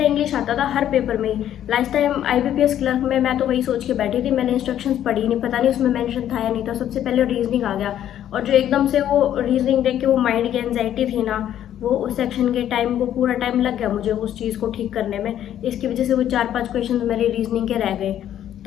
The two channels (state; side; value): quieter; right; 11.0 dB